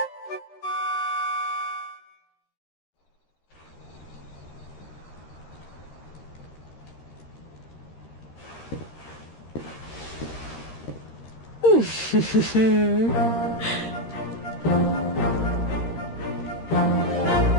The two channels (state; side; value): late; right; 13 ms